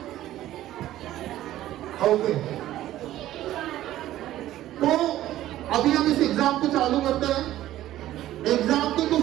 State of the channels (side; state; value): left; quieter; 14.0 dB